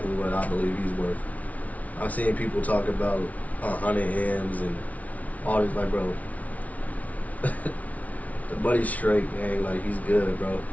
what I believe he's worth. I've seen people talk about 100 M's and all this, like, bro. The buddy's straight, man. Like, he's good, bro.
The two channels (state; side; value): late; right; 0.070 ms